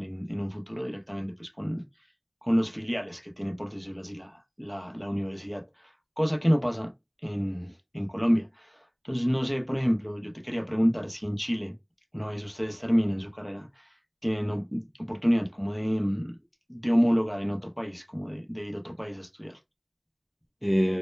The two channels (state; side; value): identical; both; correlation 1.00